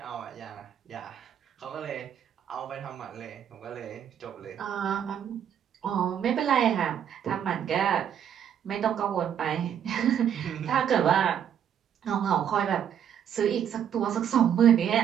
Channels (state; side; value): quieter; left; 9.1 dB